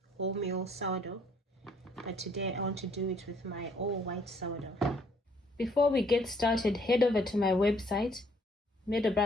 wholemeal sourdough, but today I want to do it with my all white sourdough. Before we get started, head over to my website,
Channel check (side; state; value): both; normal; correlation 0.64